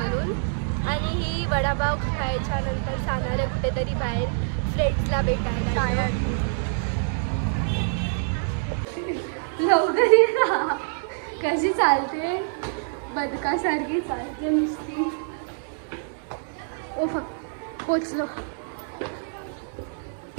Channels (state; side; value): silent; left; digital silence